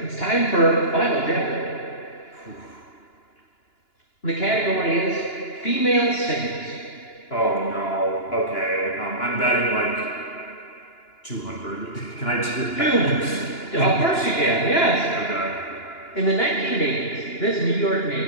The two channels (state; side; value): late; right; 2.9 ms